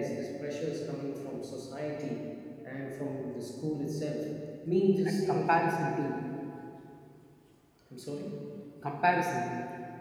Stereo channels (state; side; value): identical; both; correlation 1.00